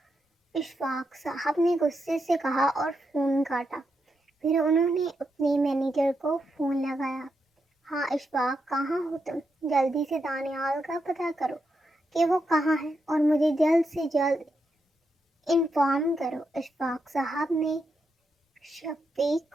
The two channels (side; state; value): both; normal; correlation 0.84